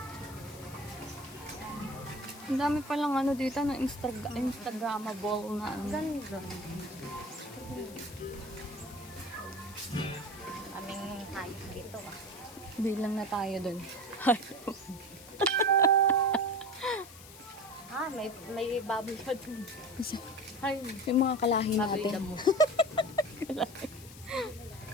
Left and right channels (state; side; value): noise; left; hiss, 18 dB below the sound